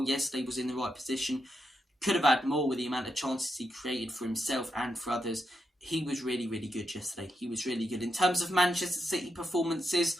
yesterday, was in the right position. Could have had more with the amount of chances he created for himself and for others. He was really, really good yesterday. He was really good. In terms of Manchester City performances,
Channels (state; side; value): normal; both; correlation 0.83